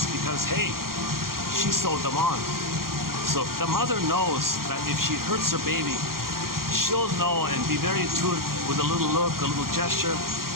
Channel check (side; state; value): left; late; 0.92 ms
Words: because, hey, she sewed them on. So the mother knows that if she hurts her baby, she'll know and be very intuitive with a little look, a little gesture.